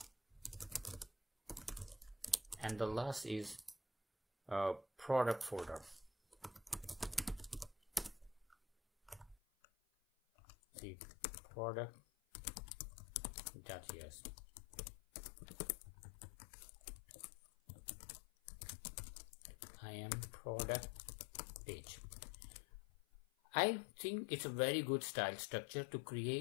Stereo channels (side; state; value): right; drops out; at 9.3 s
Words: and the last is product folder. See, product.js. I am product page. I think it's a very good style structure to